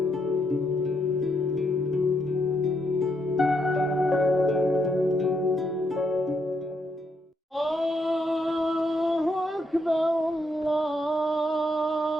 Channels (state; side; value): normal; both; correlation 0.77